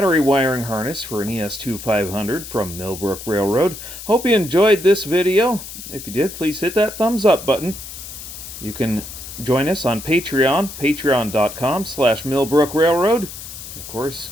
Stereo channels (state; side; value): noise; left; hiss, 12 dB below the sound